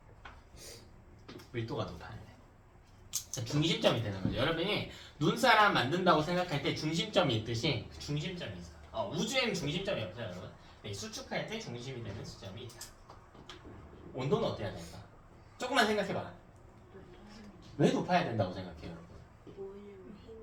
밀도가 높아야 돼. 자, 중심점이 되는 거죠. 여러분이 눈사람 만든다고 생각할 때 중심점이 있듯이 그 중심점이 있어. 우주에는 중심점이 없어요, 여러분. 네, 수축할 때 중심이 되는 수점이 있다. 온도는 어때야 될까? 조금만 생각해봐. 왜 높아야 된다고 생각해요, 여러분? 뭐냐면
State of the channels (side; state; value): both; identical; correlation 1.00